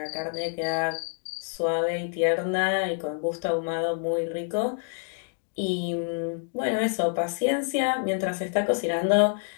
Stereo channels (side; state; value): right; silent; 60 dB below the other